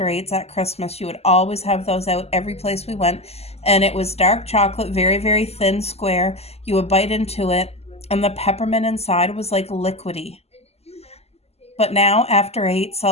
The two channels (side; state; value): right; late; 0.30 ms